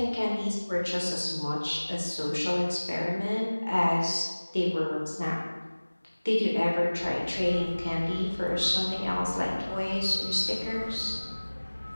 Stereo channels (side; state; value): both; inverted; correlation -1.00